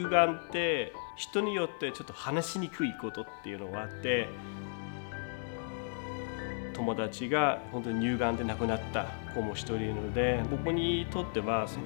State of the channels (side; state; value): right; silent; 55 dB below the other